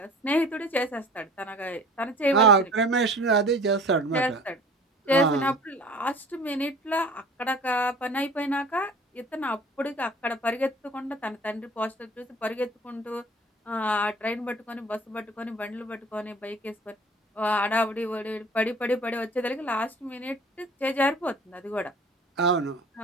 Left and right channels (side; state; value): both; normal; correlation 0.45